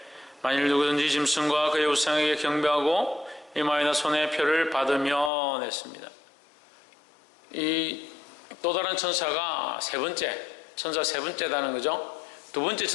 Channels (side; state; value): right; drops out; at 5.3 s